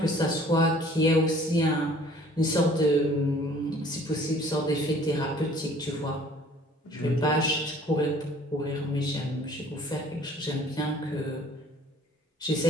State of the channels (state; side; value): normal; both; correlation 0.53